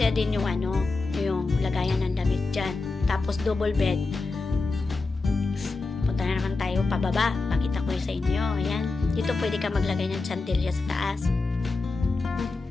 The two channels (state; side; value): quieter; right; 3.7 dB